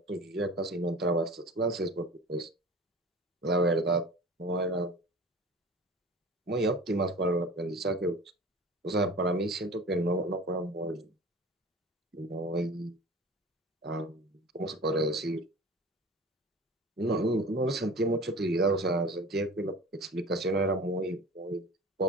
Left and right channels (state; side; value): normal; both; correlation 0.39